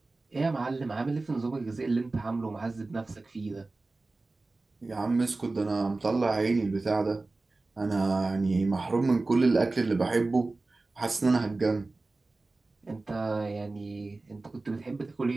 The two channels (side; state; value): left; quieter; 3.3 dB